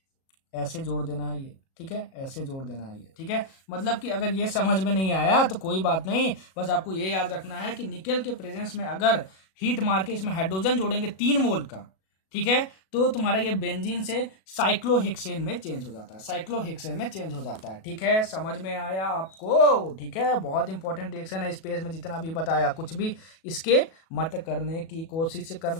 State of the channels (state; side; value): late; right; 37 ms